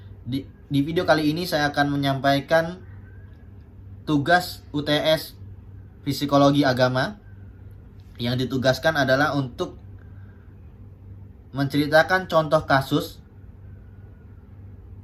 Di video kali ini saya akan menyampaikan tugas UTS Psikologi Agama. Yang ditugaskan adalah untuk menceritakan contoh kasus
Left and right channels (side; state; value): both; identical; correlation 1.00